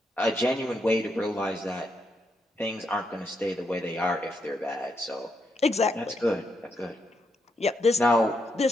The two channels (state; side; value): normal; both; correlation 0.80